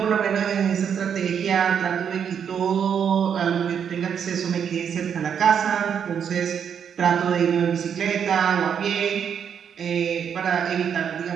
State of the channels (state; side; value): quieter; left; 7.8 dB